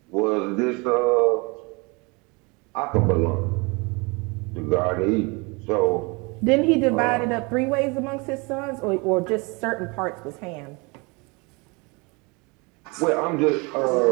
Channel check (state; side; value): quieter; left; 28.6 dB